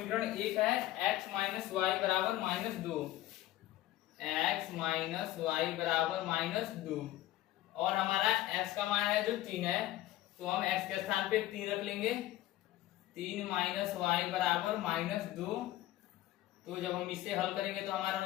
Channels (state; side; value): quieter; right; 15.2 dB